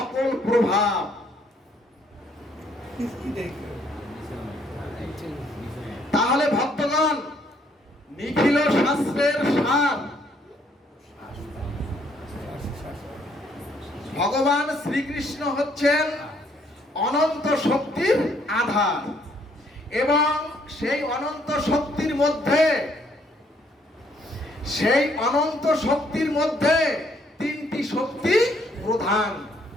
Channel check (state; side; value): normal; both; correlation 0.67